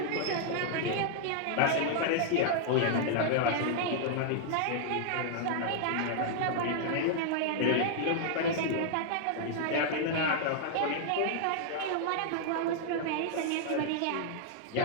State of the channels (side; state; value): both; different; correlation -0.01